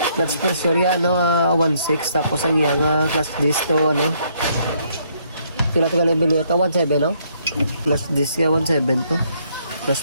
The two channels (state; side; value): inverted; both; correlation -0.70